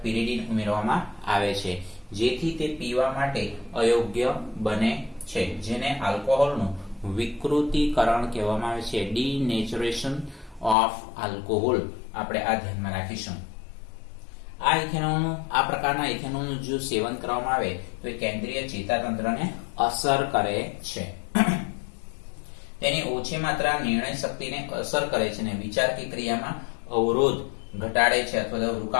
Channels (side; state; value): right; drops out; at 10.8 s